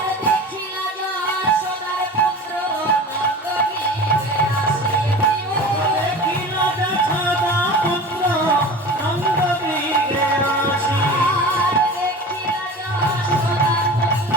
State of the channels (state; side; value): normal; both; correlation 0.36